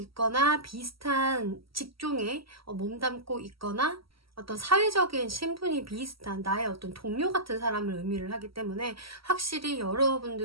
비슷한 직종에 몸담고 있거나 어떤 사회적인 신분이 비슷한 나의 어떤 동료 같은 사람을 의미를 하기 때문에 확실히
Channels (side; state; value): left; late; 0.75 ms